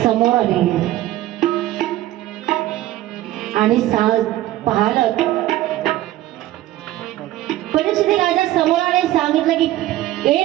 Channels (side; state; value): left; quieter; 15.0 dB